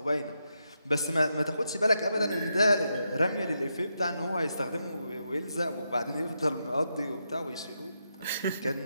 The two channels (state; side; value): inverted; both; correlation -0.83